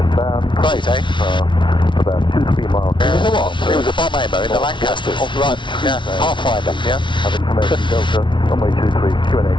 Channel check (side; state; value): right; late; 0.24 ms